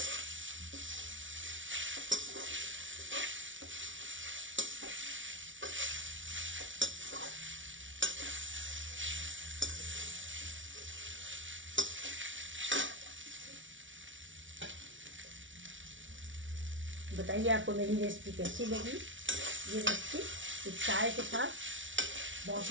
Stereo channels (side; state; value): left; late; 0.56 ms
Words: बताइए आपको मेरी रेसिपी कैसी लगी। ये रेसिपी चाय के साथ बहुत